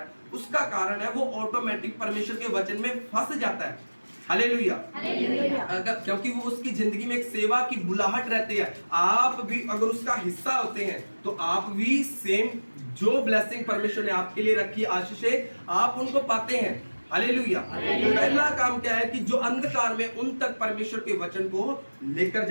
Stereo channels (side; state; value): both; inverted; correlation -1.00